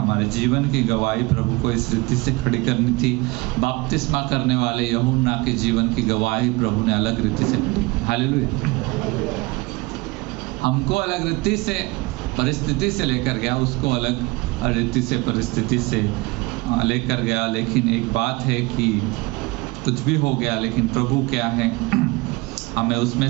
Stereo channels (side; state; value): left; quieter; 23.9 dB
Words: जीवन की गवाही प्रभु को इस रीति से खड़ी करनी थी। बपतिस्मा करने वाले यूहन्ना के जीवन की गवाही प्रभु ने अलग रीति से खड़ी की। हालेलुया। हमको अलग रीति से परिस्थिति से लेकर गया, उसको अलग रीति से परिस्थिति से लेकर गया। लेकिन एक बात है कि कुछ भी हो गया, लेकिन प्रभु क्या है? हमें उसमें